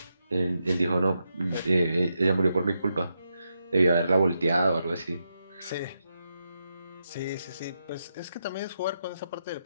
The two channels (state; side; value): inverted; both; correlation -0.84